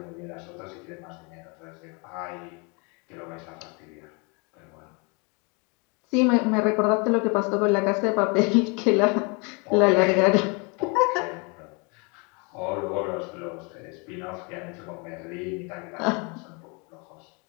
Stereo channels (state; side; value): quieter; right; 31.8 dB